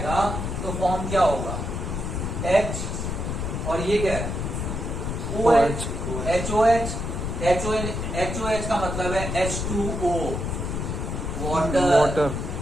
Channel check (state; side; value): noise; left; rumble, 3 dB below the sound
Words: तो फॉर्म क्या होगा, H, और ये क्या है OH, HOH का मतलब है H2O, वाटर।